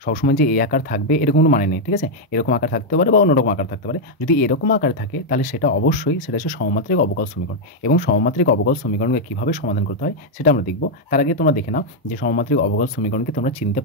সবসময় যে এই আকার থাকবে এরকম কোনো মানে নেই, ঠিক আছে? এরকম আকার থাকতে পারে বা অন্যরকম আকার থাকতে পারে। যদি এরকম আকার থাকে তাহলে সেটা অবশ্যই সেটা হচ্ছে সমমাত্রিক অবকল সমীকরণ। এবং সমমাত্রিক অবকল সমীকরণকে কীভাবে সমাধান করতে হয় সেটা আমরা দেখব। তার আগে তোমরা দেখে নাও যে সমমাত্রিক অবকল সমীকরণকে তোমরা চিনতে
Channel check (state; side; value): normal; both; correlation -0.01